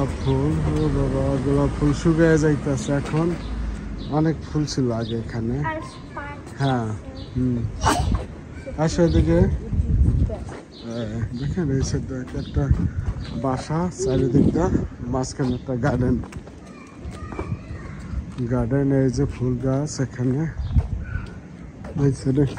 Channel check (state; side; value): identical; both; correlation 1.00